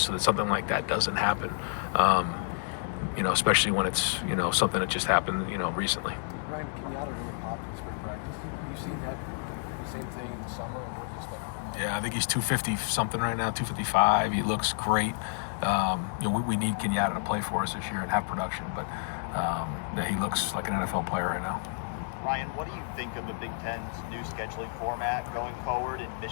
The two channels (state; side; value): silent; right; digital silence